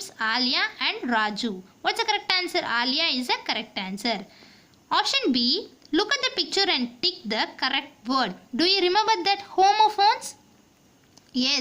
Alia and Raju. What's the correct answer? Alia is the correct answer. Option B, look at the picture and tick the correct word. Do you remember that homophones?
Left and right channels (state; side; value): identical; both; correlation 1.00